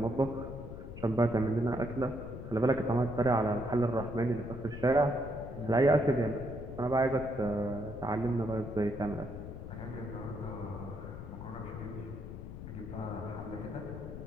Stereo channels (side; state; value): left; noise; rumble, 10 dB below the sound